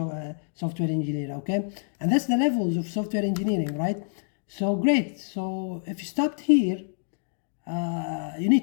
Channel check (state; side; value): silent; right; digital silence